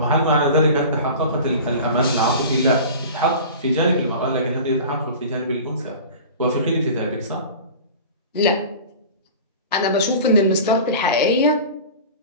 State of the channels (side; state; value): both; inverted; correlation -0.37